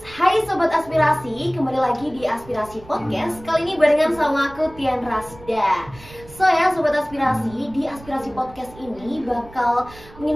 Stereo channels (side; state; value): right; noise; rumble, 20 dB below the sound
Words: Hai Sobat Aspirasi, kembali lagi di Aspirasi Podcast. Kali ini barengan sama aku Tian Rasda. So ya Sobat Aspirasi, di Aspirasi Podcast ini bakal